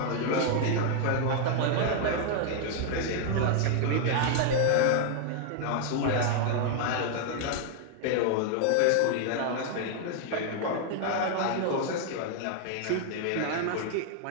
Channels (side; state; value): both; different; correlation 0.00